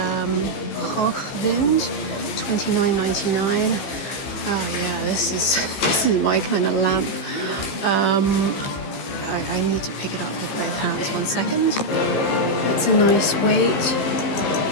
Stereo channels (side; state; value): right; late; 15 ms